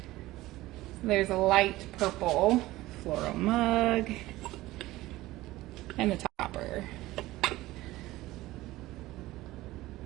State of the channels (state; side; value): quieter; left; 17.6 dB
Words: There's a light purple floral mug and the topper.